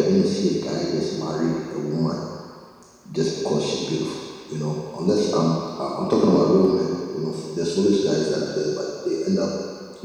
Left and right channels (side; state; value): both; identical; correlation 1.00